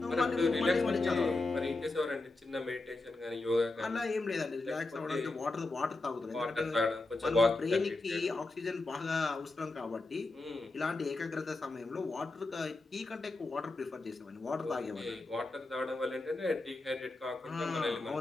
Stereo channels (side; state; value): right; quieter; 3.1 dB